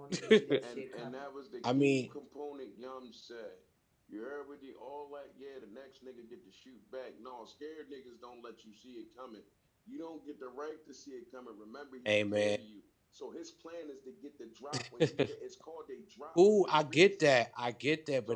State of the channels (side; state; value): both; identical; correlation 1.00